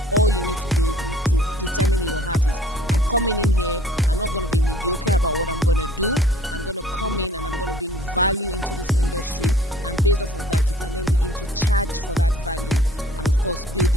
All you need to do to determine in your heart is, I'm coming in here, I'm not going to be mediocre about what I'm going to do. I'm going to come in and I'm going to bring value into this industry, and based off of that, you can then begin to charge for that value and of course build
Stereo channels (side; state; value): both; normal; correlation 0.54